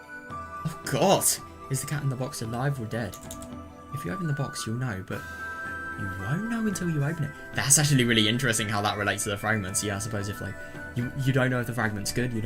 Oh god! Is the cat in the box alive or dead? If you open the box, you'll know, but you won't know until you open it. That's actually really interesting how that relates to the fragments. Yeah, I suppose if like you don't know if the fragment's good, you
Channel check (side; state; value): both; identical; correlation 1.00